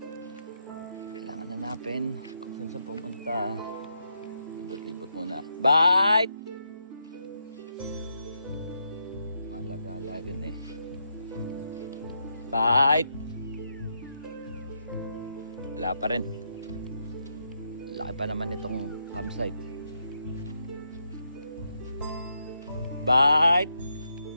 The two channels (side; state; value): both; inverted; correlation -0.82